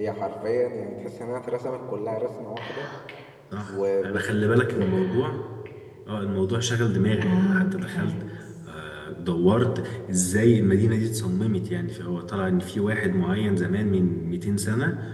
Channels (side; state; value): both; identical; correlation 1.00